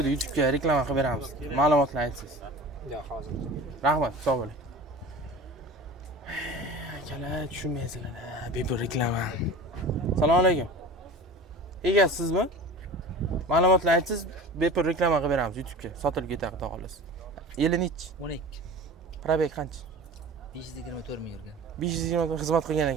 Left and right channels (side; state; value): both; normal; correlation 0.36